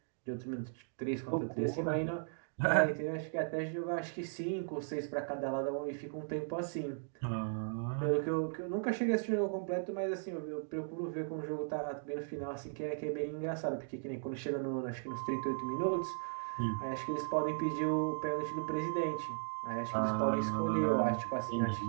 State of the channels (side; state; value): left; silent; digital silence